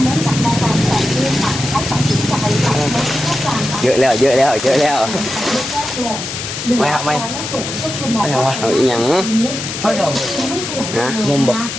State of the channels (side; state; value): left; noise; hiss, 6 dB below the sound